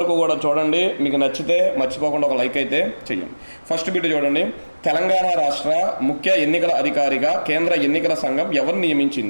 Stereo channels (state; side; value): inverted; both; correlation -1.00